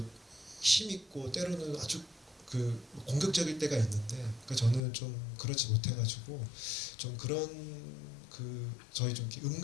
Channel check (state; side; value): drops out; right; at 4.8 s